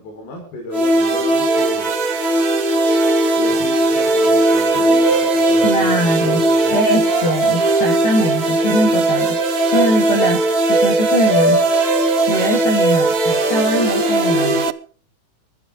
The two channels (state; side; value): late; right; 18 ms